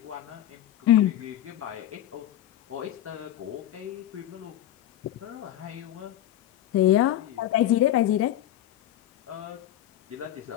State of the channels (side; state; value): right; quieter; 12.5 dB